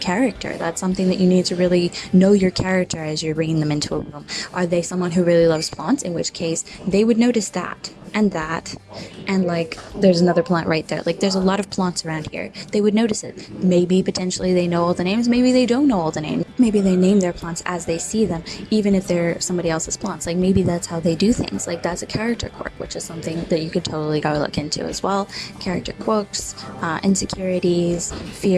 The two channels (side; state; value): both; identical; correlation 1.00